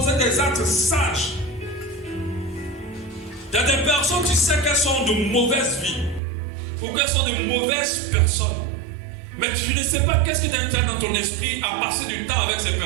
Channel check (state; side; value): drops out; left; at 6.2 s